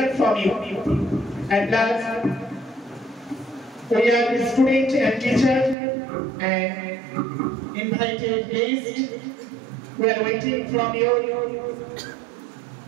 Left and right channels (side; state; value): left; drops out; at 5.8 s